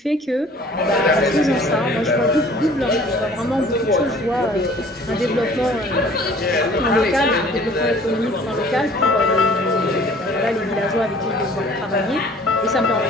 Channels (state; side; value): normal; both; correlation 0.52